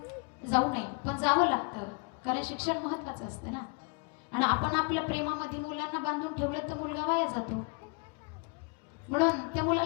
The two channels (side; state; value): right; quieter; 34.5 dB